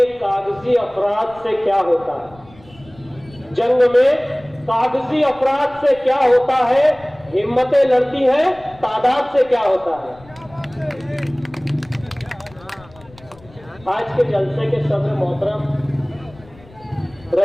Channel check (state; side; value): noise; left; rumble, 24 dB below the sound